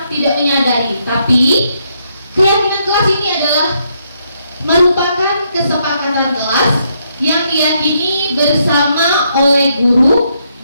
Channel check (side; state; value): both; inverted; correlation -0.76